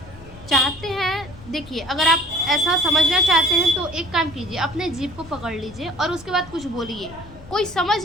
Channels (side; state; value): left; noise; rumble, 19 dB below the sound